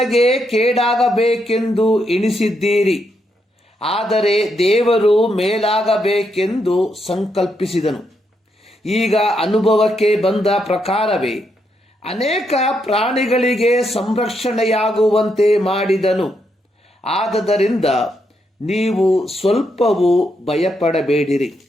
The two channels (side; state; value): both; normal; correlation 0.79